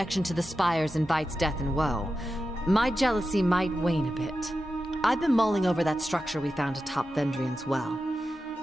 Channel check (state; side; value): normal; both; correlation 0.91